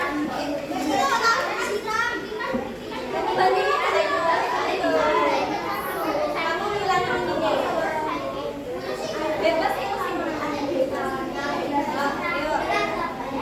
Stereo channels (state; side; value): identical; both; correlation 1.00